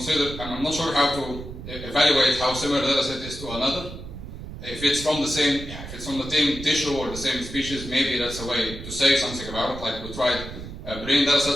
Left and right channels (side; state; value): right; noise; rumble, 11 dB below the sound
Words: not sure how to evaluate how similar the data set is to another. If it's from the same, if it's from the same tissue or the same species, maybe that's a way to say something about it. Like we tried brain data